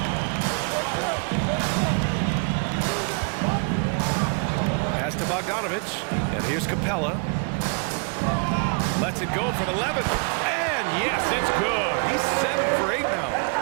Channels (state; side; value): quieter; left; 37.3 dB